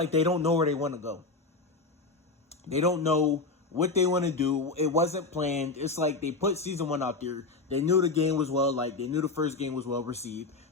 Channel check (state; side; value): quieter; right; 3.7 dB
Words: they don't know where they want to go. They don't know what they want to do. It wasn't planned. It's like they put season 1 out there. They knew the game was they knew the first game was well received,